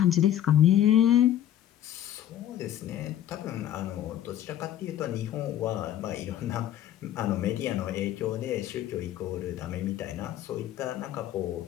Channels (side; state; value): right; quieter; 11.6 dB